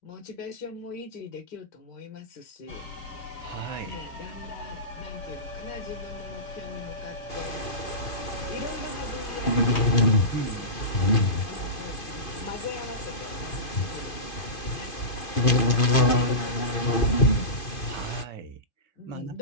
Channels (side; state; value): right; late; 2.5 ms